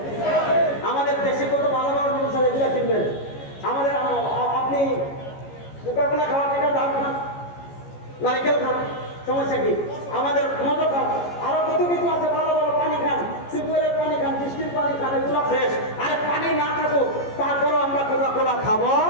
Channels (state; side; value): late; right; 14 ms